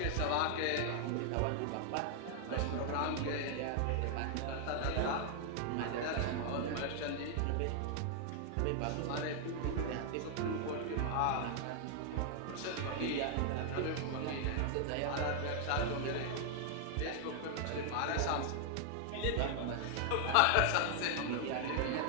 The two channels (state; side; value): different; both; correlation 0.00